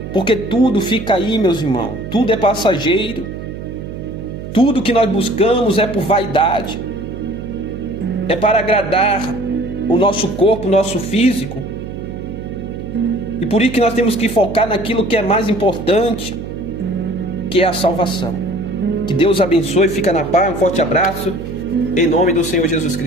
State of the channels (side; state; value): right; noise; hum, 9 dB below the sound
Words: Porque tudo fica aí, meus irmãos, tudo é passageiro. Tudo que nós buscamos é por vaidade, é para agradar o nosso corpo, o nosso físico. E por isso que nós temos que focar naquilo que é mais importante, que é a salvação. Que Deus abençoe, fica na paz, um forte abraço, em nome do Senhor Jesus